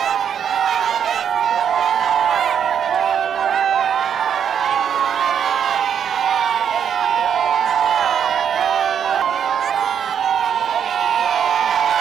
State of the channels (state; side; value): quieter; left; 8.3 dB